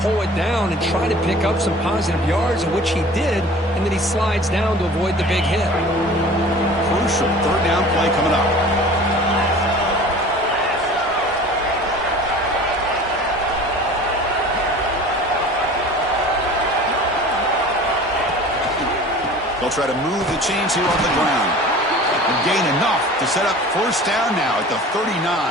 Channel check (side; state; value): both; normal; correlation 0.42